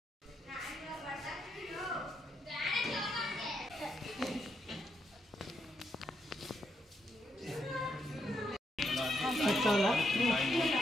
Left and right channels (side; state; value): both; normal; correlation 0.79